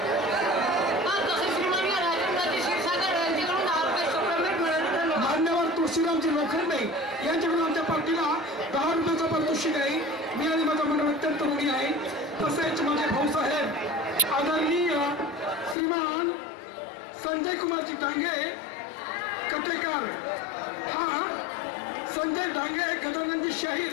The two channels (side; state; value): right; drops out; at 15.8 s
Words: मान्यवर तुळशीरामजी लोखंडे यांच्याकडून आमच्या पार्टीला 10 रुपयाचं पारितोषिक आहे. मी आणि माझा मंडळ अत्यंत ऋणी आहे. तसेच माझे भाऊसाहेब आदरणीय श्रीमान संजय कुमारजी डांगे कटेकर, हा संजय डांगे गजानंदी